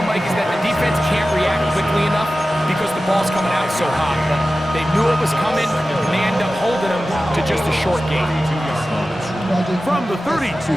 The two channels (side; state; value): both; normal; correlation 0.95